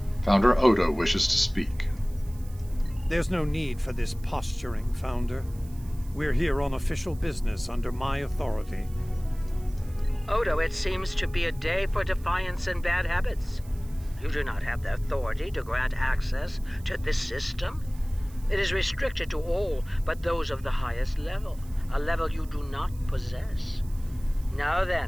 Founder Odo wishes to speak. There's no need for this posturing, Founder. We're here on official business under my authority. Odo, it seems to be a day for defiance and bad habits. You do not have the authority to grant access to this system. It is restricted to all but those of the highest level, a level you do not possess. Now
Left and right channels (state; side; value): noise; right; hiss, 24 dB below the sound